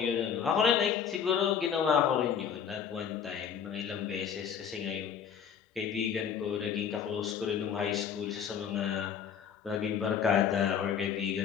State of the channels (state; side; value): quieter; right; 7.8 dB